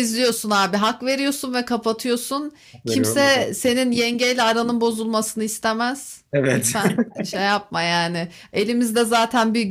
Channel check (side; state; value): both; identical; correlation 1.00